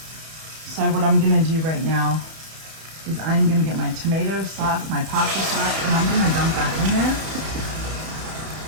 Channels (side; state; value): left; late; 31 ms